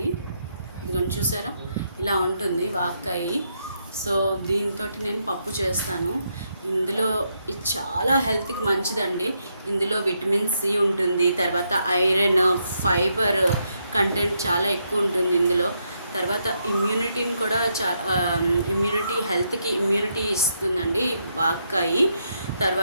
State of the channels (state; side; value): inverted; both; correlation -0.79